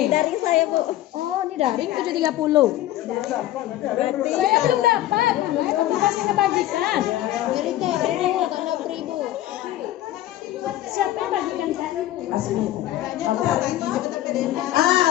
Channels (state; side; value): quieter; right; 14.2 dB